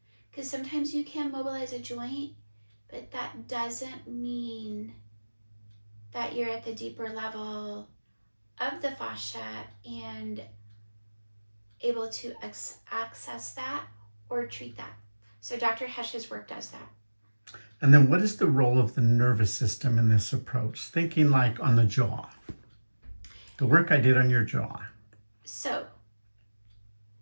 because sometimes you can mobilize a joint, but that doesn't mean that you're at the deeper level of the fascia and able to access that or treat that. So Dr. Hesch's work does that. And then what is the role of the nervous system in this approach? Thinking like on the jaw, the work I did on your jaw. So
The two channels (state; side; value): inverted; both; correlation -1.00